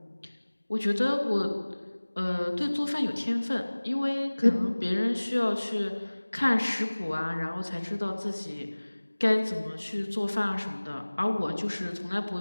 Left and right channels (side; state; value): both; inverted; correlation -1.00